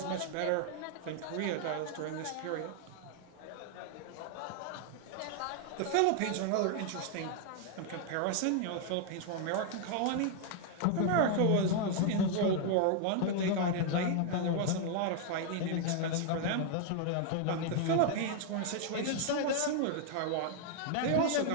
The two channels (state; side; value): different; both; correlation 0.00